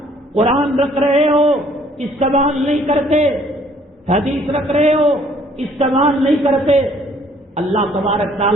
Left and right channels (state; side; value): normal; both; correlation 0.60